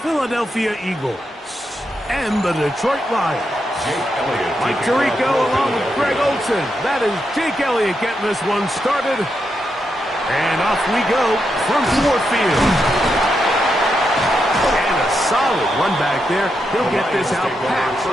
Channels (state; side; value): normal; both; correlation 0.84